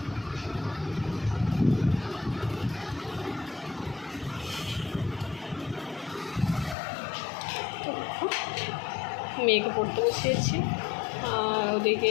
মেয়েকে পড়তে বসিয়েছি আর ওদিকে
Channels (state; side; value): drops out; right; at 6.8 s